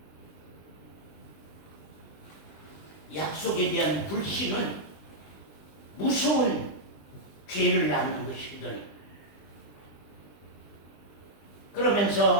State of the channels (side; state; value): right; late; 20 ms